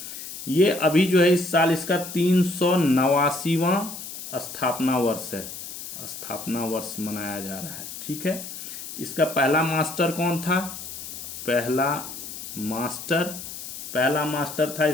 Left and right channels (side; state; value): left; noise; hiss, 10 dB below the sound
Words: ये अभी जो है इस साल इसका 389वां स्थापना वर्ष मनाया जा रहा है। ठीक है, इसका पहला मास्टर कौन था? पहला मास्टर था